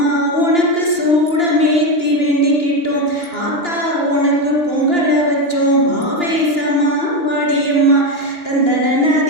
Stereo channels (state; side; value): late; right; 2.9 ms